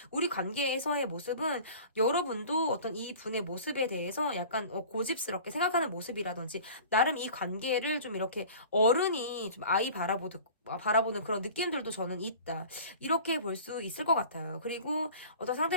우리 관계에서의 모습은 여러분도 어떤 이 분의 모습에 대해서 약간 고집스럽게 생각하는 모습이라든지 나름 이 관계를 좀 이렇게 어른이 좀 아이 바라보는 그런 느낌들도 저는 있다. 이렇게 볼 수 있을 것 같아요. 그리고 어떤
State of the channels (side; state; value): both; inverted; correlation -0.42